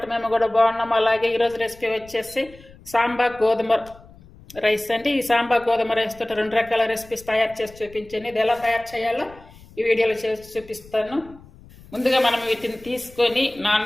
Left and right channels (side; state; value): left; noise; rumble, 22 dB below the sound